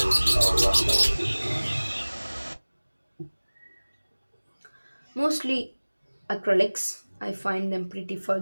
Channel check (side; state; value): both; inverted; correlation -1.00